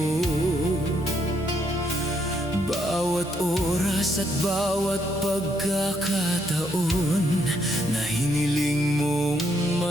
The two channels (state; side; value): normal; both; correlation 0.75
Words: Bawat oras at bawat pagkakataon na hiniling mong